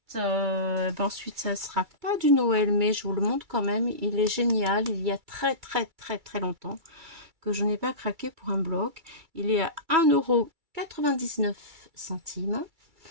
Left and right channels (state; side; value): late; left; 2.3 ms